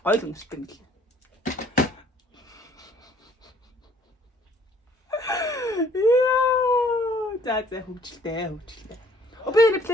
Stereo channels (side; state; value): both; normal; correlation 0.59